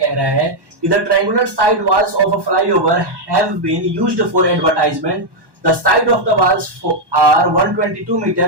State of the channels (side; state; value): left; late; 1.1 ms